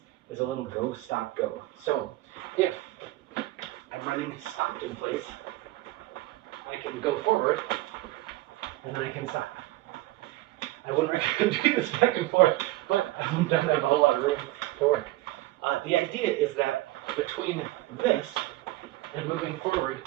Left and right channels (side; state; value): left; quieter; 17.8 dB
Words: is a little go, stop, go. So if I'm running stopped in place, I can go forward and then I can stop. I wouldn't recommend doing this back and forth, but I don't have a whole lot of room to work. The idea is that between this and moving forward,